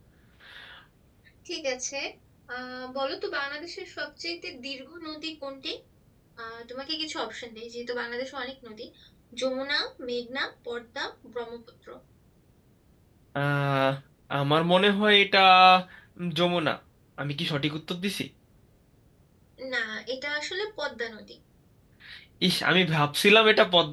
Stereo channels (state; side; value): identical; both; correlation 1.00